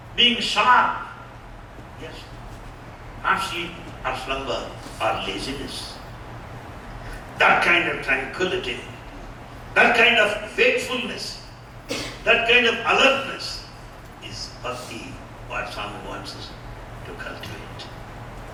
being sharp. Yes. Not sleep or slumber or laziness. That kind of tranquility, that kind of wakefulness, that kind of alertness is bhakti, what Swami wants us to cultivate,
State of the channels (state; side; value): identical; both; correlation 1.00